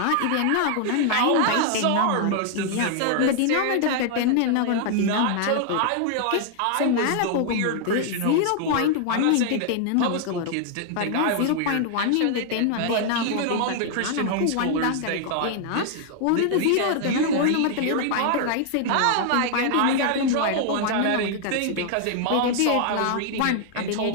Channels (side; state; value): both; different; correlation 0.00